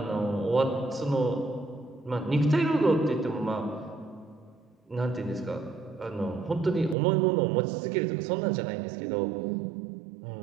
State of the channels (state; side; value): drops out; left; at 7.0 s